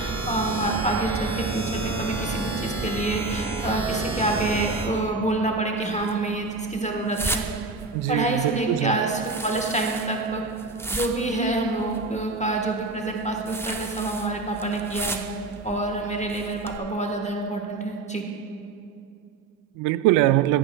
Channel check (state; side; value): quieter; left; 3.7 dB